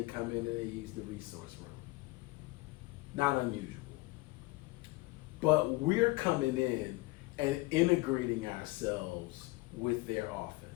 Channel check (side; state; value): right; quieter; 22.1 dB